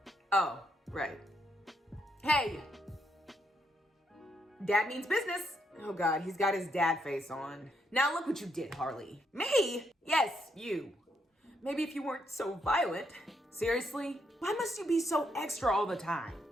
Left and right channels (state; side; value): normal; both; correlation 0.77